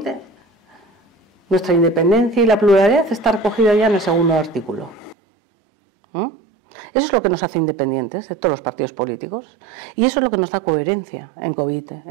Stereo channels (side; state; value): left; drops out; at 5.2 s